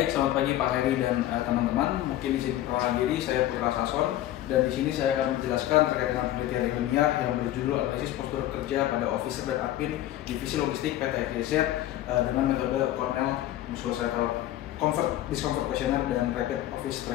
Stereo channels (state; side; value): quieter; right; 13.8 dB